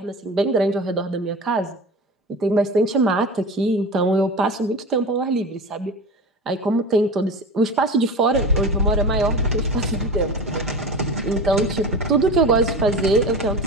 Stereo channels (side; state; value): both; normal; correlation 0.30